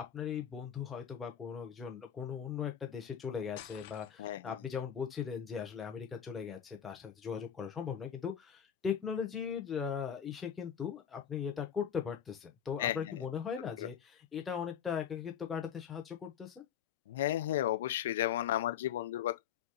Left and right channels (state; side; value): quieter; right; 8.6 dB